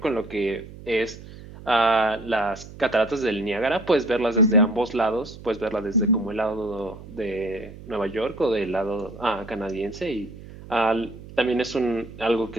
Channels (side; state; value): right; noise; hum, 16 dB below the sound